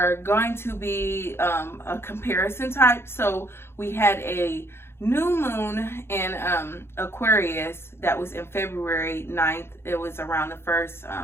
going to be a comparison type. So we had a new moon in Aquarius that was in February 9th. It was around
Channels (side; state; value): right; late; 0.12 ms